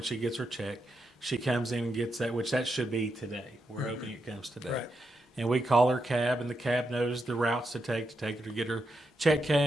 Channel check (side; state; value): both; normal; correlation 0.84